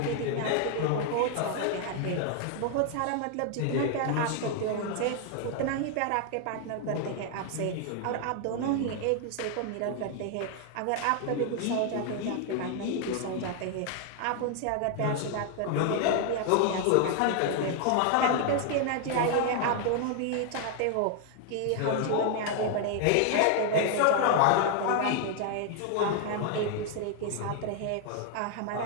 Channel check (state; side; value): different; both; correlation 0.00